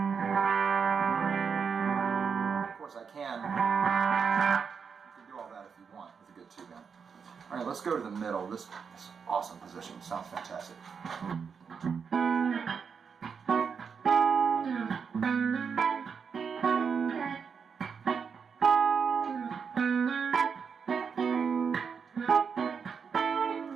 Of course you can do all that if you want with a good tube amp. All right, let's go to the middle. This is awesome position. Sounds fantastic.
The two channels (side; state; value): left; quieter; 6.2 dB